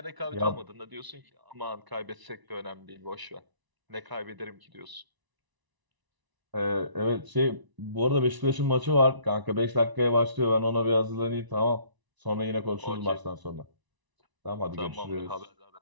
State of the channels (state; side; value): late; left; 1.0 ms